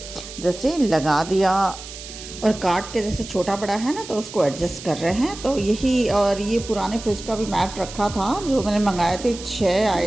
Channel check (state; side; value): noise; right; hiss, 13 dB below the sound